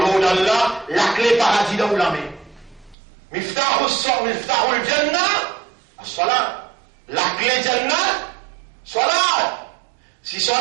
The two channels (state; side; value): drops out; left; at 3.0 s